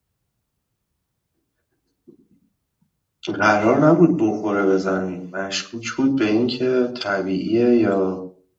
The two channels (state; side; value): identical; both; correlation 1.00